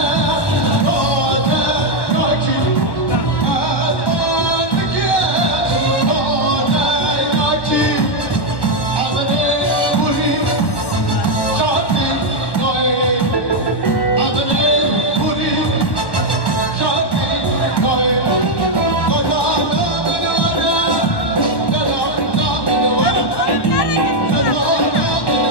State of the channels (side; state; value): right; late; 1.1 ms